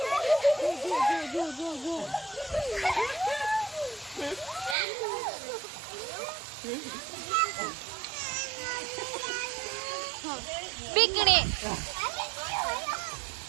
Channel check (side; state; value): left; drops out; at 4.8 s